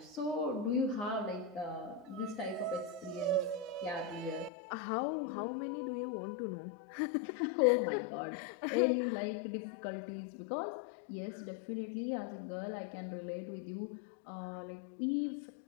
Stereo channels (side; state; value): right; drops out; at 4.5 s